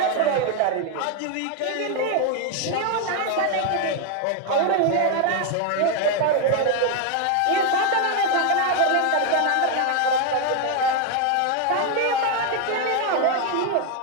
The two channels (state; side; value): different; both; correlation 0.01